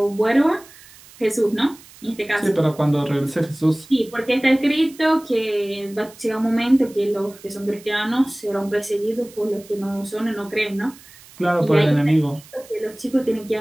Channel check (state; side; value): noise; right; hiss, 22 dB below the sound